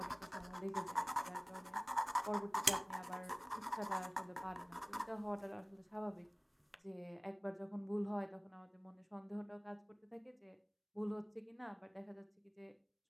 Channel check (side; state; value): both; identical; correlation 1.00